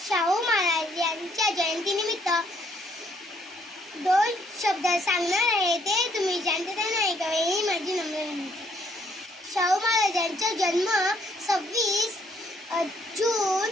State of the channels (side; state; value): both; normal; correlation 0.68